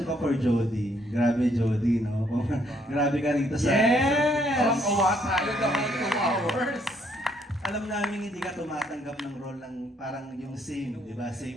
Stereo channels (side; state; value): both; normal; correlation 0.69